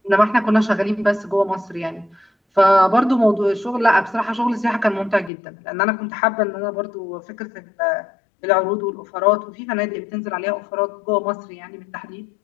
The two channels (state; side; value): drops out; right; at 5.3 s